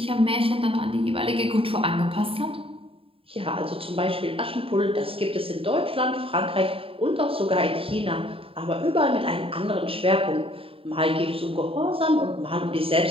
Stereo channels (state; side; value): late; left; 0.27 ms